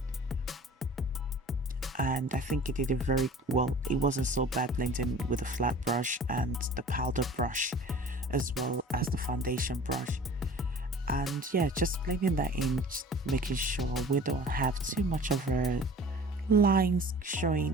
And I think it did it very well. It wasn't so bad blending with the flat brush and the powder brush as well as the foundation brush. And yeah, just blending that in, making sure we don't have too much of a lines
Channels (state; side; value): normal; both; correlation 0.44